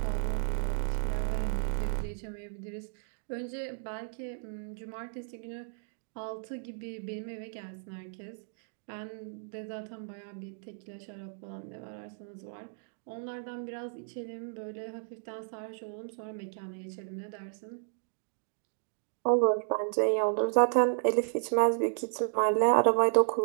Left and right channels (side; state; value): left; silent; digital silence